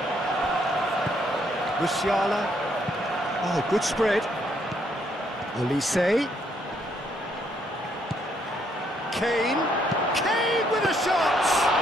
Musiala. Oh, good spread. Olise. Kane. Kane with a shot!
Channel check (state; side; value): normal; both; correlation 0.71